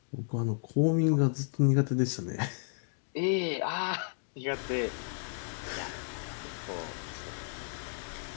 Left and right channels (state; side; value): silent; right; digital silence